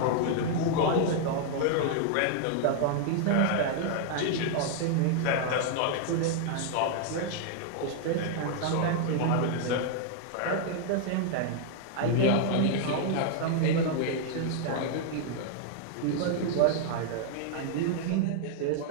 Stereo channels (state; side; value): different; both; correlation 0.00